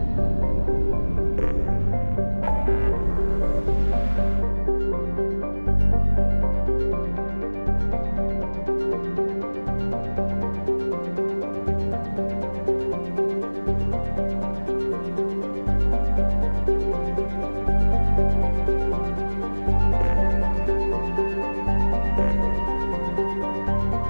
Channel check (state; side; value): inverted; both; correlation -1.00